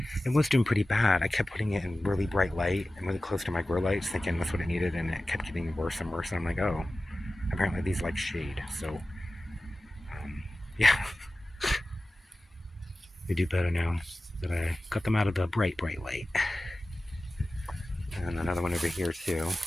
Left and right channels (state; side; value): normal; both; correlation 0.96